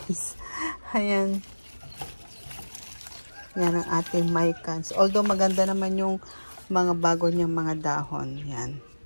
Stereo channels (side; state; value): both; inverted; correlation -1.00